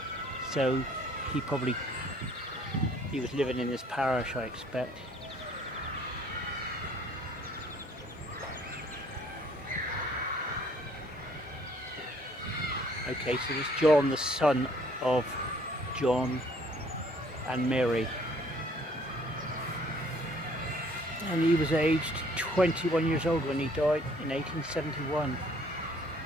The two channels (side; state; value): both; normal; correlation 0.60